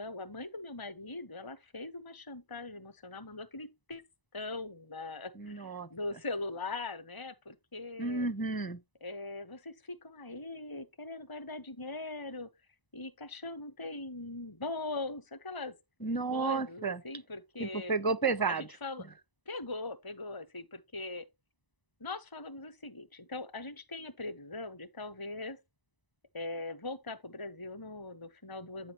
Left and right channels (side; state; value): right; late; 1.0 ms